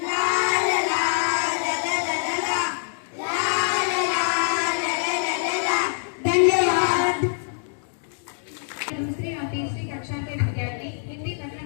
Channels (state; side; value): silent; right; digital silence